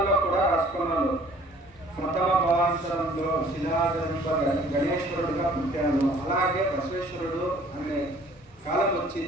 కూడా రాసుకున్నారు. ప్రథమ భావాంతరంలో శిలాగర్భ గణేశ్వరుడుగా పుట్టాను. అలాగే బసవేశ్వరుడు అనే కాలం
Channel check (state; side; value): normal; both; correlation 0.54